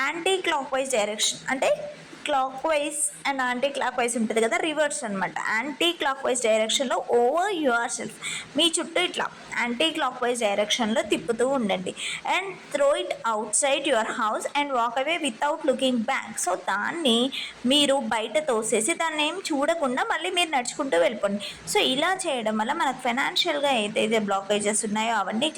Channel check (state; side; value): identical; both; correlation 1.00